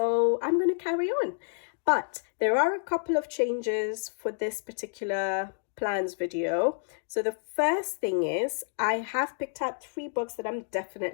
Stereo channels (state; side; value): silent; right; digital silence